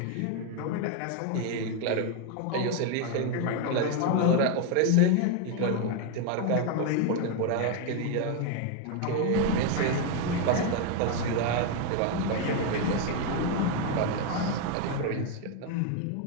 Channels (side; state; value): both; different; correlation 0.01